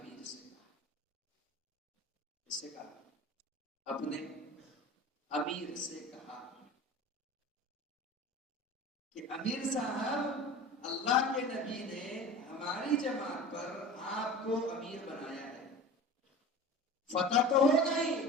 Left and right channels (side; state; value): both; normal; correlation 0.36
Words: سے کہا، اس سے کہا، اپنے امیر سے کہا کہ امیر صاحب، اللہ کے نبی نے ہماری جماعت پر آپ کو امیر بنایا ہے، فتح تو ہو گئی،